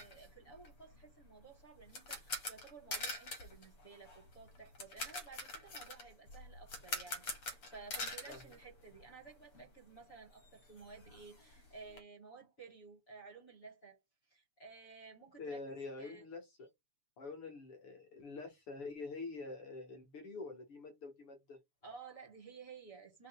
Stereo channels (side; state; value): right; late; 6.9 ms